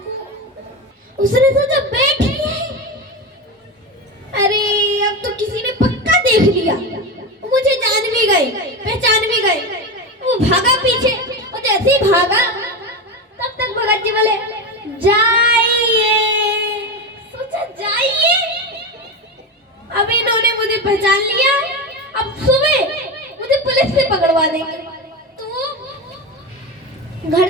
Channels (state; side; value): normal; both; correlation 0.19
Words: उसने सोचा बैठिए, अरे अब तो किसी ने पक्का देख लिया, मुझे जान भी गए, पहचान भी गए। वो भागा पीछे, और जैसे ही भागा तब तक भगत जी बोले जाइए। सोचा जाइए, अब इन्होंने मुझे पहचान लिया, अब सुबह मुझे पुलिस से पकड़वा देंगे। तो घर